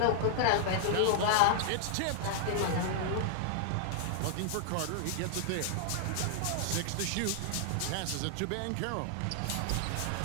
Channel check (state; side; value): different; both; correlation -0.01